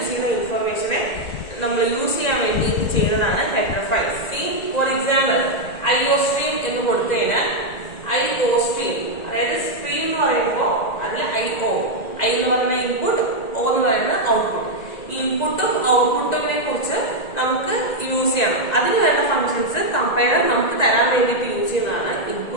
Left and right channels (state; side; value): late; right; 1.9 ms